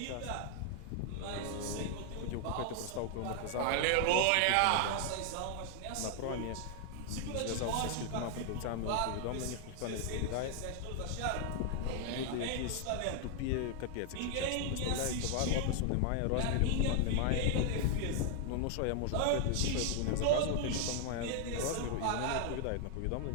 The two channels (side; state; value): both; different; correlation 0.00